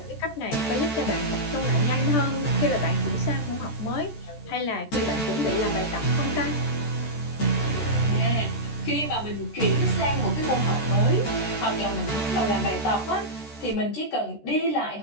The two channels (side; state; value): right; late; 14 ms